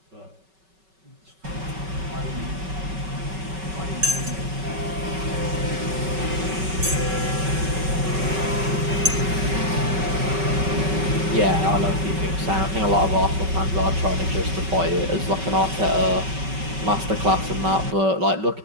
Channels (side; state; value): left; late; 5.3 ms